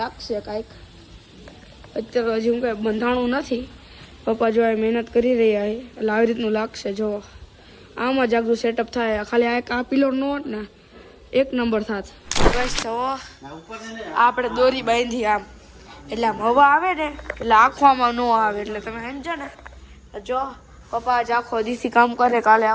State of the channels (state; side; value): identical; both; correlation 1.00